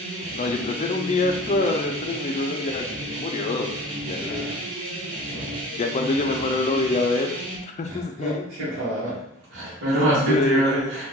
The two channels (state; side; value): normal; both; correlation 0.41